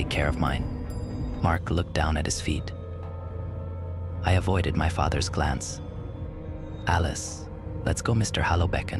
care of mine. Mark looked down at his feet. I avoided my father's glance. Alice, let's go, Mr. Hallow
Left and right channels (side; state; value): both; identical; correlation 1.00